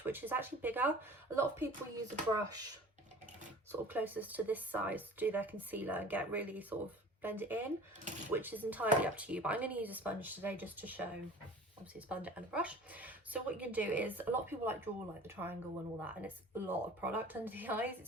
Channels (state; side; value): normal; both; correlation 0.43